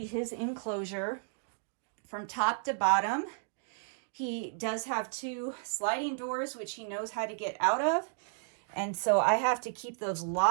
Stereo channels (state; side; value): silent; left; digital silence